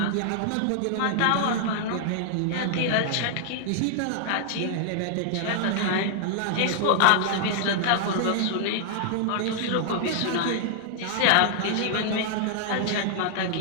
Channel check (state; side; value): different; both; correlation -0.01